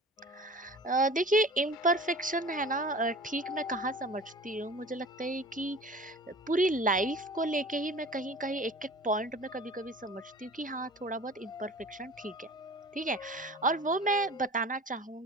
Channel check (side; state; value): both; normal; correlation 0.42